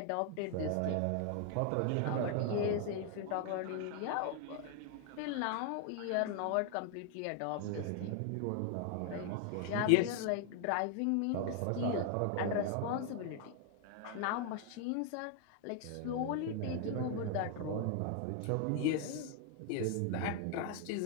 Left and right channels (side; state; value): both; different; correlation 0.00